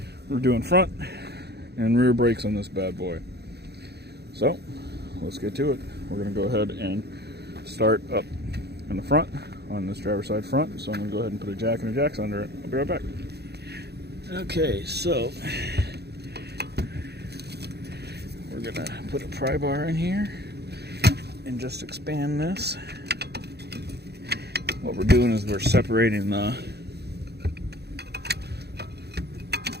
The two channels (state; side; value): late; left; 0.48 ms